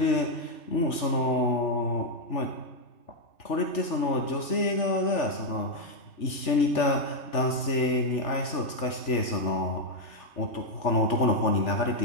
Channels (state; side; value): late; right; 3.4 ms